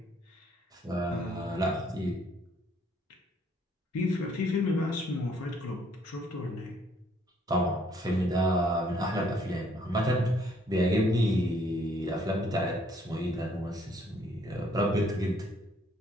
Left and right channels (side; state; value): both; normal; correlation 0.65